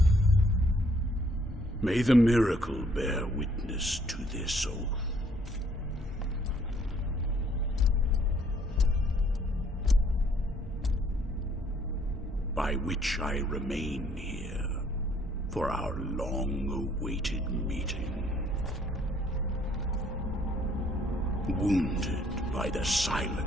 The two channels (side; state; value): both; normal; correlation 0.65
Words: May the miracle bear witness to this oath. By which I remain here for our long-awaited meeting. Wounded by the